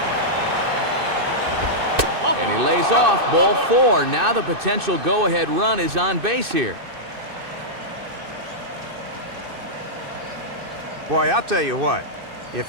And he lays off, ball 4. Now the potential go-ahead run is on base here. Boy, I'll tell you what.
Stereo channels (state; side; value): late; left; 2.6 ms